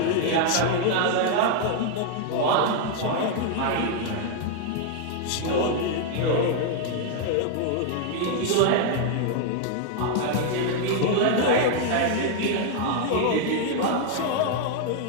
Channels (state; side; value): different; both; correlation 0.00